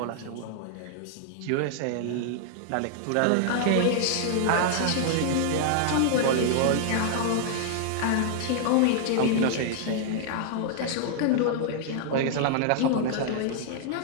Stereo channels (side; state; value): both; different; correlation -0.01